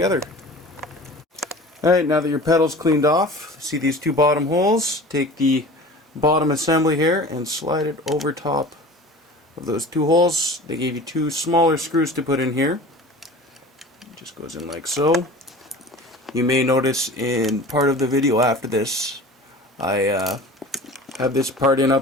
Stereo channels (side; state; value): both; normal; correlation 0.39